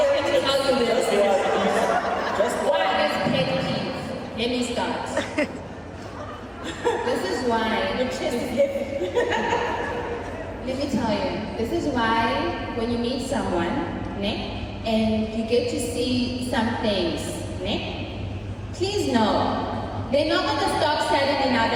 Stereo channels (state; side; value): identical; both; correlation 1.00